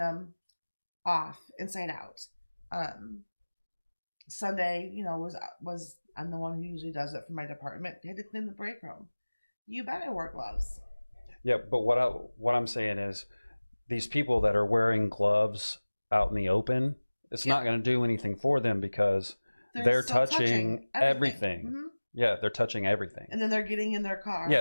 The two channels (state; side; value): inverted; both; correlation -1.00